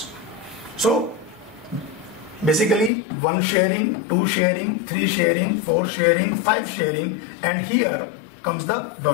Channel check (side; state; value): right; drops out; at 2.9 s